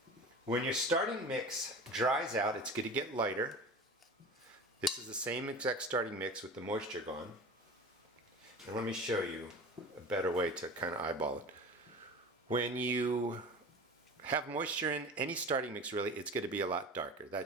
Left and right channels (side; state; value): both; normal; correlation 0.35